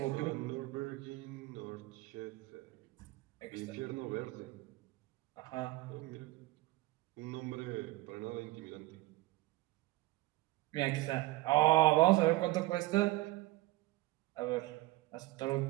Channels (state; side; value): quieter; left; 19.4 dB